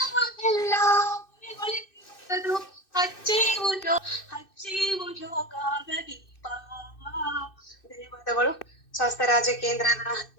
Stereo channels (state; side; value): late; right; 2.6 ms